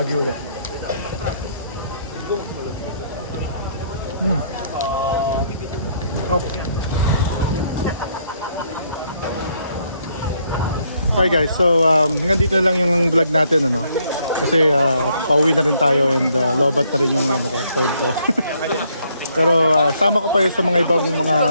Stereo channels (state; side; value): inverted; both; correlation -0.70